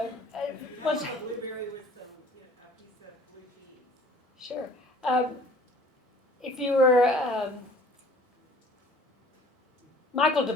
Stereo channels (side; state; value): both; normal; correlation 0.51